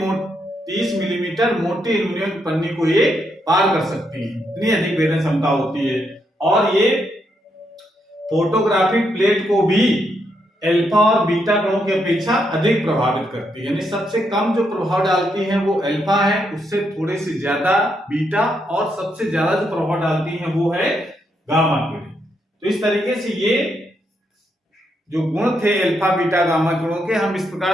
मिलीमीटर मोटी एल्युमिनियम पन्नी को ये पार कर सकती है, इतनी अधिक भेदन क्षमता होती है। और ये फोटोग्राफिक प्लेट को भी अल्फा और बीटा कणों की अपेक्षा अधिक प्रभावित करती है, यानी सबसे कम जो प्रभाव डालती है वो अल्फा है, उससे थोड़े से ज्यादा बीटा, और सबसे ज्यादा जो प्रभाव डालती है वो है गामा किरण। तो इस तरीके से ये जो गुण थे अल्फा बीटा गामा किरणों के, हम इस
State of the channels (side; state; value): both; normal; correlation 0.79